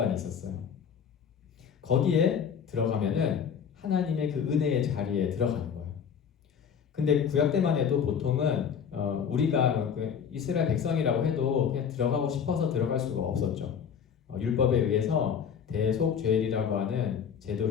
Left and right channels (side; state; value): right; quieter; 7.4 dB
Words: 있었어요. 거기에 들어가면은 하나님의 그 은혜의 자리에 들어가는 거예요. 근데 구약 때만 해도 보통은 우리가 이스라엘 백성이라고 해도 그냥 들어가고 싶어서 들어갈 수가 없었죠. 율법에 의해서 대속죄일이라고 하는